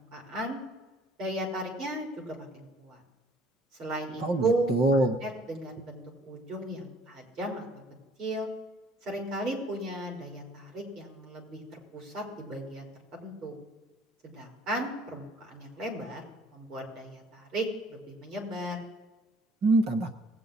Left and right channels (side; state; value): both; normal; correlation 0.58